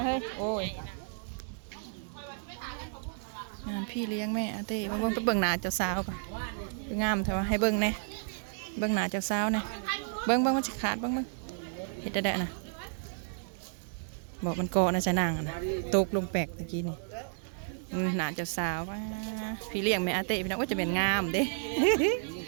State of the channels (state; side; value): silent; left; 56 dB below the other